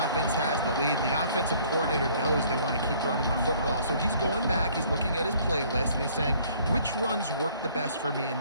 offense has the lead, and the offensive coordinator knows they want to keep running the football. So he's going back, he's looking at his playlist, and he's saying, which runs work the best for me in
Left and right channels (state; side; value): inverted; both; correlation -0.58